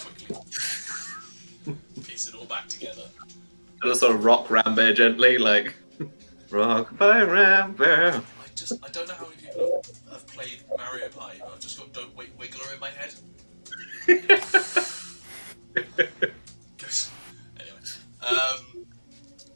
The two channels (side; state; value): both; inverted; correlation -1.00